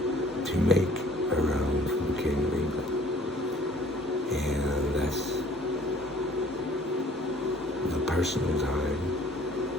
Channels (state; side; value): normal; both; correlation 0.55